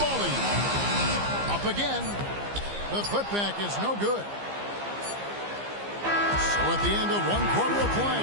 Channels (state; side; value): late; left; 15 ms